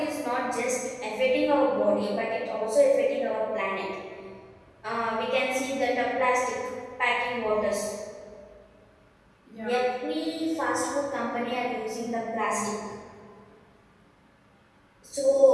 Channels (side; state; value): both; identical; correlation 1.00